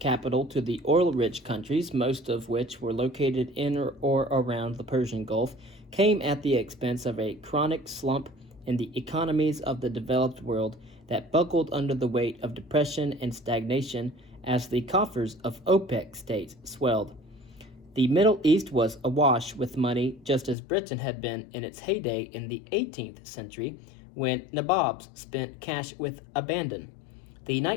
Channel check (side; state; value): right; drops out; at 20.6 s